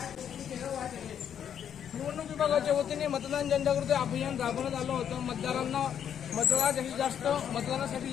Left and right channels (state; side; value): quieter; right; 8.9 dB